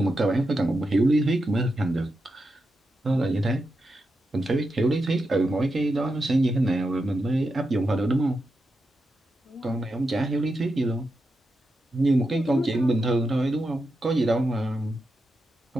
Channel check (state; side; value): normal; both; correlation 0.87